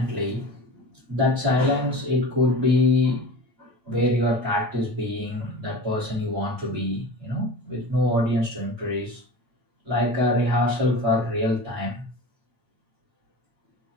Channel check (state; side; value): late; left; 8.8 ms